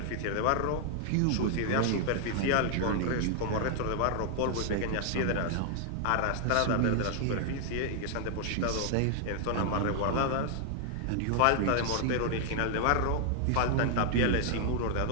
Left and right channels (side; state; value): both; different; correlation 0.00